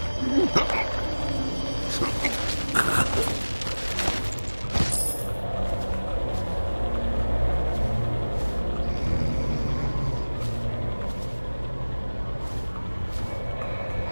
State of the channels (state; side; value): inverted; both; correlation -1.00